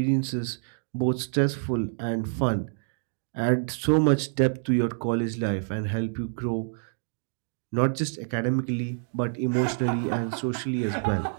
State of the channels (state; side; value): silent; left; digital silence